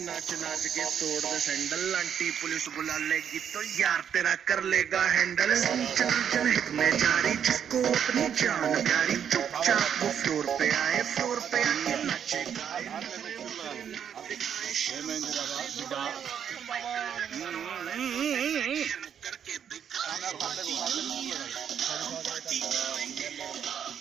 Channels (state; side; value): quieter; left; 8.4 dB